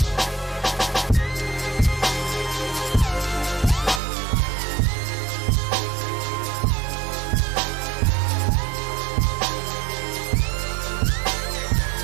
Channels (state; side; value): drops out; left; at 4.0 s